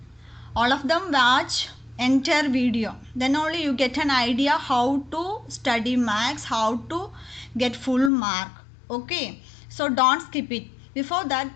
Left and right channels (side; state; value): right; drops out; at 8.1 s